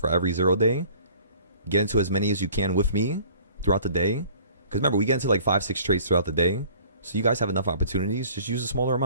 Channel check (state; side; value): inverted; both; correlation -0.51